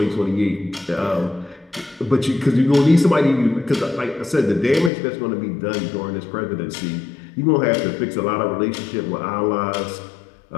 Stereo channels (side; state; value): right; drops out; at 4.9 s